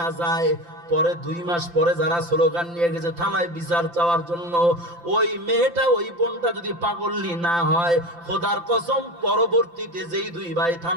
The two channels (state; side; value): late; left; 5.8 ms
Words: যায়, পরে 2 মাস পরে যারা স্লোগান নিয়ে গেছে থানায় বিচার চাওয়ার জন্য, ওই মেয়েটা ওই বোনটা যদি পাগলনি না হয়, খোদার কসম পরবর্তীতে যেই 2 ভাই